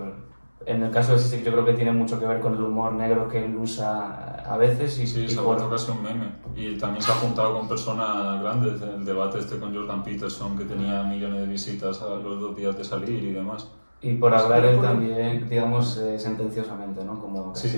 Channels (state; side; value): inverted; both; correlation -1.00